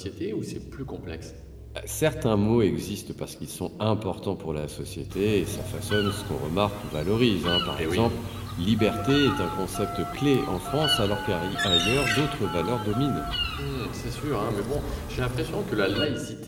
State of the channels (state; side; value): identical; both; correlation 1.00